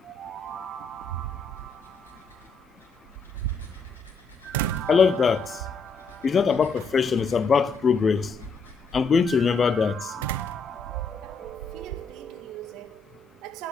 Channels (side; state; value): right; quieter; 4.1 dB